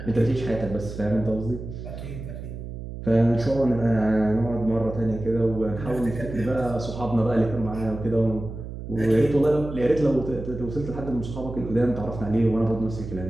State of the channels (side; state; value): right; noise; hum, 9 dB below the sound